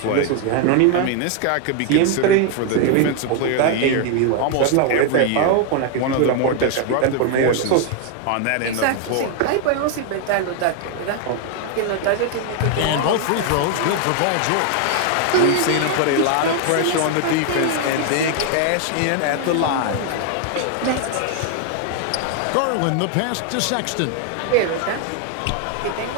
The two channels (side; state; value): both; different; correlation 0.00